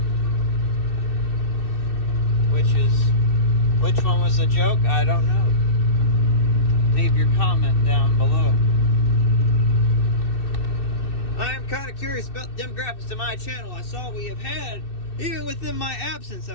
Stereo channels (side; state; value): right; late; 2.6 ms